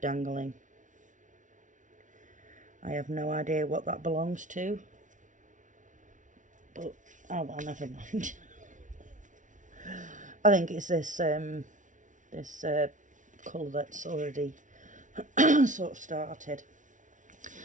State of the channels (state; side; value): late; left; 0.37 ms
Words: I have no idea what that belongs to. But, oh well, never mind. I think it's this colour that's already sort of started.